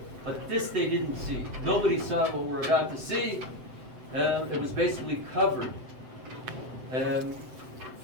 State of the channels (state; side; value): late; left; 7.9 ms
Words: but this they didn't see. Nobody saw what we're about to see. It was basically covered